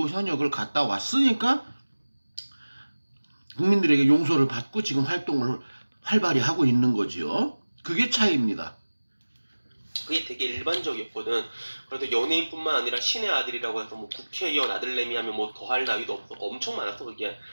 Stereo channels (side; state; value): both; inverted; correlation -1.00